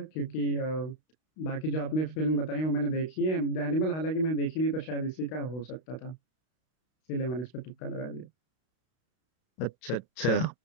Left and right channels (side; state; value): right; late; 32 ms